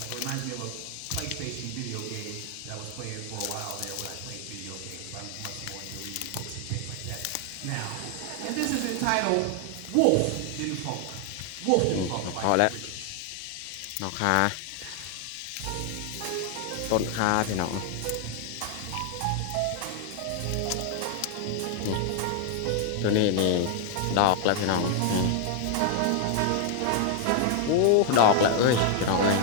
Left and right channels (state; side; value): different; both; correlation 0.00